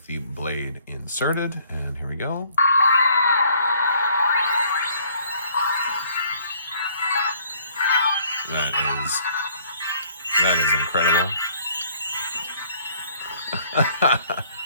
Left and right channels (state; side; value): inverted; both; correlation -0.60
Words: the blade inserted, and here we go. That is incredible.